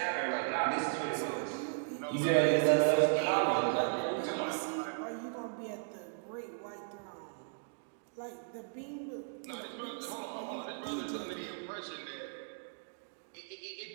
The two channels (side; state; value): left; silent; digital silence